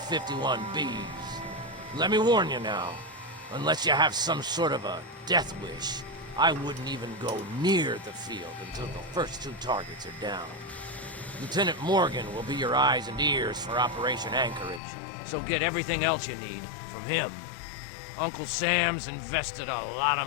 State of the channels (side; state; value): right; drops out; at 14.8 s